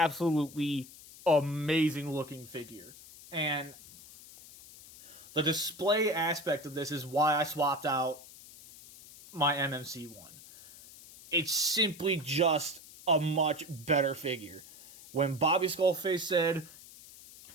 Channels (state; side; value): noise; left; hiss, 19 dB below the sound